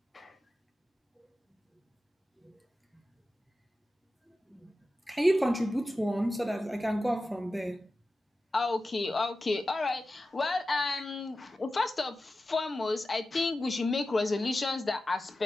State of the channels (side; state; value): both; normal; correlation 0.94